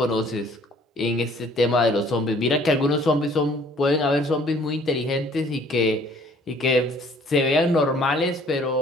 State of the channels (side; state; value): both; normal; correlation 0.57